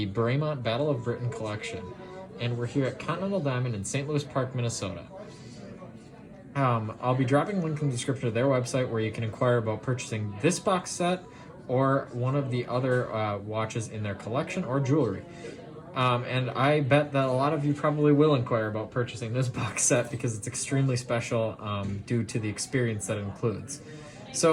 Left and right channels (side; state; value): both; identical; correlation 1.00